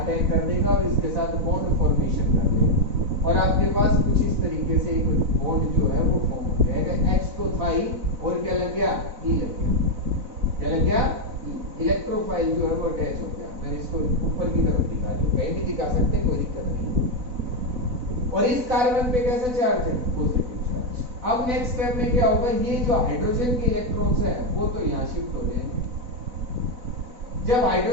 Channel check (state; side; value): late; left; 4.0 ms